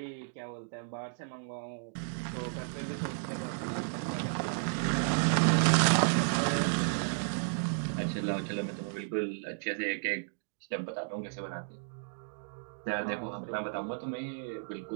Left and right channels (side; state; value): left; silent; digital silence